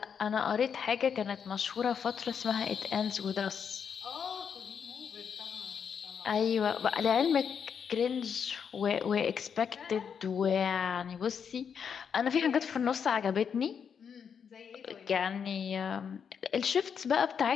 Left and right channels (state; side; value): quieter; right; 7.1 dB